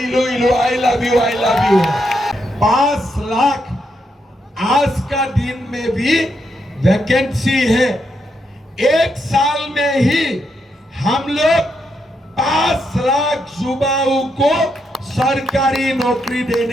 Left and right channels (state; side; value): normal; both; correlation 0.81